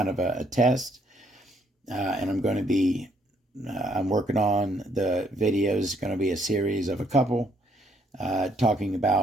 of a test, and I'm going to be, I'm working on the videos. It's going to be a series of a couple talking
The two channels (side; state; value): both; normal; correlation 0.68